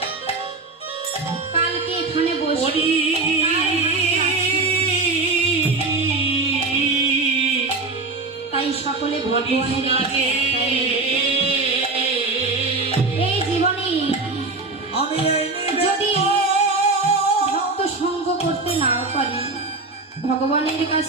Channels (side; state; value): left; quieter; 3.6 dB